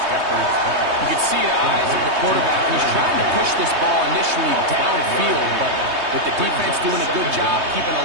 can see the eyes of the quarterback. He's trying to push this ball initially downfield, but with the defense doing a good job keeping a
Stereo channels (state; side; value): late; left; 3.2 ms